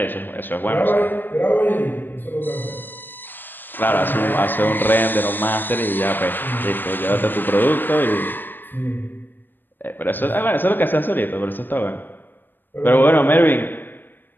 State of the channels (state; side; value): late; right; 0.093 ms